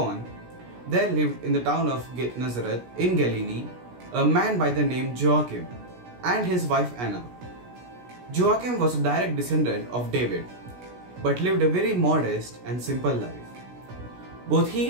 there lived in the town of Nazareth in Galilee a man by the name Joachim and his wife Anna. Joachim was a direct descendant of David, but lived a very modest and simple life. Both he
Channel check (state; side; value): late; left; 16 ms